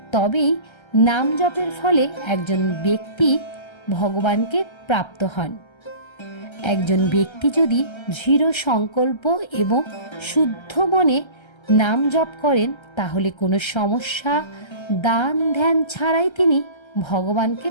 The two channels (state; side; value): late; right; 1.3 ms